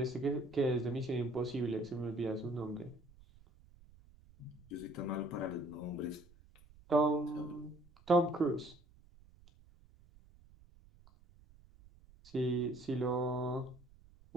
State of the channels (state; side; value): noise; right; rumble, 25 dB below the sound